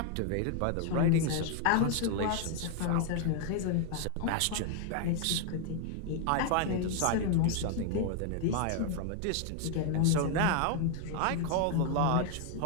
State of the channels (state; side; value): different; both; correlation 0.00